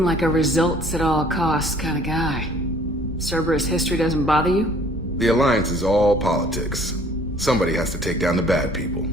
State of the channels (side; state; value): both; normal; correlation 0.55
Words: like a results at all costs kind of guy. Cerberus history doesn't bother you? The Alliance is all politics. Somebody has to take down the bad people.